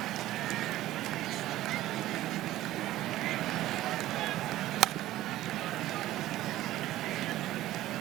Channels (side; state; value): left; quieter; 15.0 dB